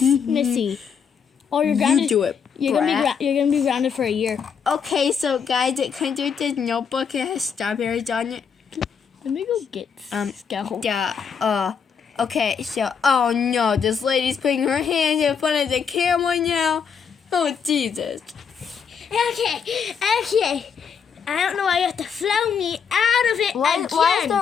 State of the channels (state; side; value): quieter; right; 6.7 dB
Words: Or you're grounded. You do it. You're gonna be grounded for a year. Okay, so guys, it comes with this notebook. It has strawberries on it. Let me go get Scout. Yeah. Okay. So, oh no, this lady's putting her hands in front of the camera now. Oh Jesus. Okay. I don't know why you have to flow me out of it again. Why is